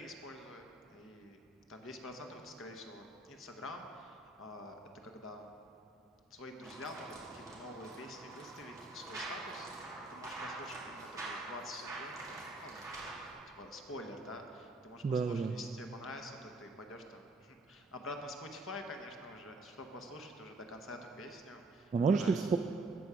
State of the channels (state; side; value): quieter; left; 3.1 dB